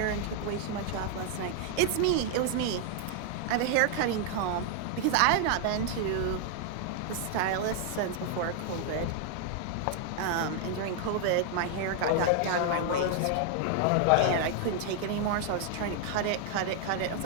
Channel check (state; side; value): different; both; correlation 0.00